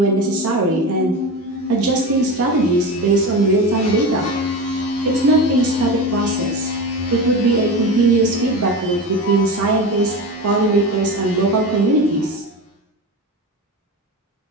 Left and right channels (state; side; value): normal; both; correlation 0.25